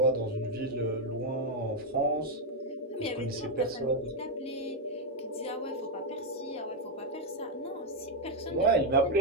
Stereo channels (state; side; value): normal; both; correlation 0.01